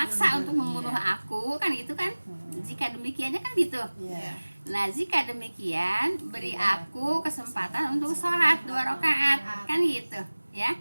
untuk membunuh aku, kan gitu kan? Jika demikiannya kan gitu. Nah jika demikian beri aku kesempatan untuk sholat 2 rakaat, kan gitu ya.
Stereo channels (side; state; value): both; inverted; correlation -1.00